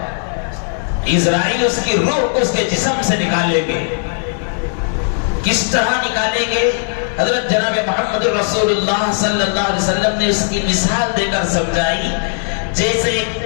اسرائیل اس کی روح کو اس کے جسم سے نکالیں گے۔ کس طرح نکالیں گے؟ حضرت جناب محمد رسول اللہ صلی اللہ علیہ وسلم نے اس کی مثال دے کر سمجھائی، جیسے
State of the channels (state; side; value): silent; right; digital silence